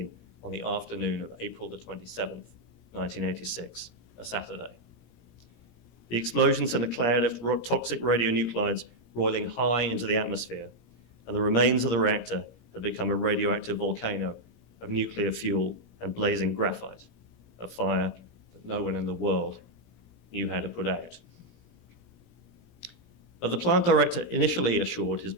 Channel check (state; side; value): late; right; 17 ms